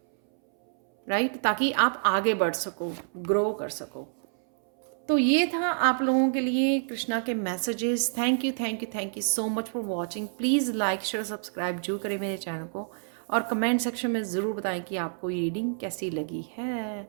राइट, ताकि आप आगे बढ़ सको, ग्रो कर सको। तो ये था आप लोगों के लिए कृष्णा के messages. Thank you thank you thank you so much for watching. Please like share subscribe जरूर करें मेरे चैनल को, और कमेंट सेक्शन में ज़रूर बताएं कि आपको ये रीडिंग कैसी लगी है।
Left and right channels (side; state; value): left; silent; 59 dB below the other